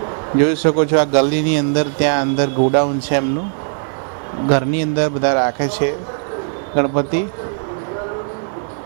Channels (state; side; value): silent; left; 62 dB below the other